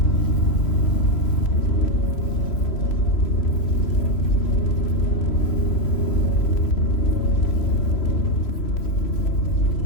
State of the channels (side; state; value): right; late; 3.0 ms